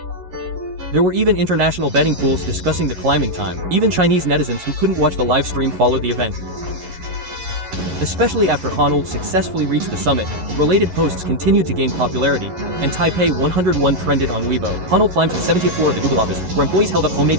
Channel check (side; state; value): left; late; 11 ms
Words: There were even international betting pools discussing the climbing time. Even Chinese netizens who couldn't watch the live stream followed the event. Especially after Honnold successfully reached the summit, related posts continued to gain popularity, and Taipei 101 trended on Weibo. Honnold climbed to the 70th floor of the Google office, where employees held up homemade